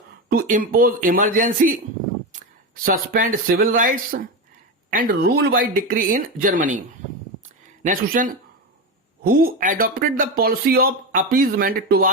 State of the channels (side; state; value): both; normal; correlation 0.16